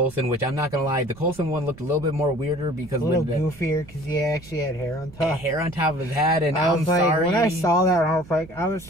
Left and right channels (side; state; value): right; noise; rumble, 20 dB below the sound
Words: which I'm not gonna lie, the Coulson one looked a little bit more weirder because a little goofier because he actually had hair on top. Hair on top of his head, and I'm sorry. When I saw that, I was like,